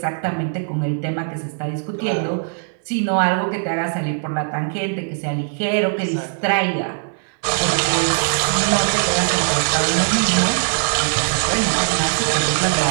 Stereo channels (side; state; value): left; silent; digital silence